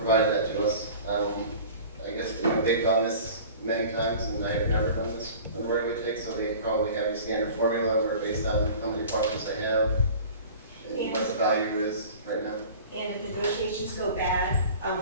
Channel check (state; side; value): inverted; both; correlation -0.42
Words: that to us. I guess, they've done this many times, and I have never done this on the right-of-way take, so they probably have a standard formula where based on how many parcels they have, and what the value is right now. And if negotiations go bad,